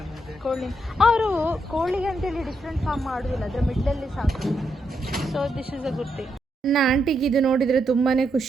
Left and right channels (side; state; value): both; normal; correlation 0.80